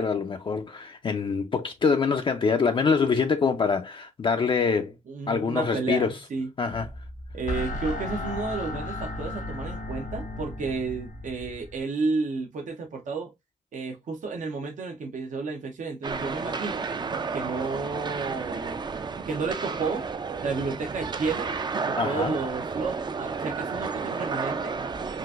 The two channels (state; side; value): normal; both; correlation 0.54